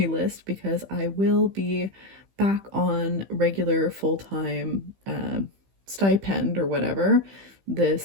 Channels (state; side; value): late; left; 15 ms